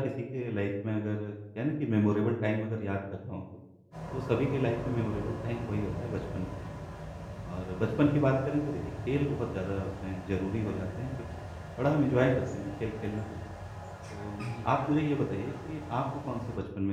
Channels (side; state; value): both; identical; correlation 1.00